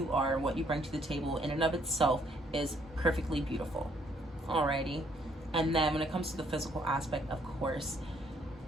are, what you bring to the table in and of itself is perfectly beautiful. Alrighty. And then when it comes to the physical aspect, of course,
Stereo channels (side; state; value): both; normal; correlation 0.67